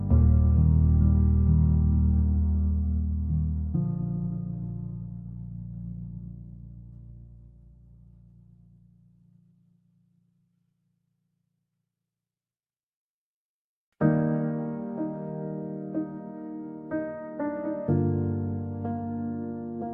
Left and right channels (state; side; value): identical; both; correlation 1.00